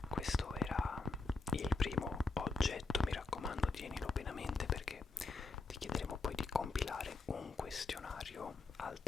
Questo era il primo oggetto, mi raccomando tienilo bene a mente perché ti chiederemo poi di compilare un questionario al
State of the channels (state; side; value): quieter; right; 3.9 dB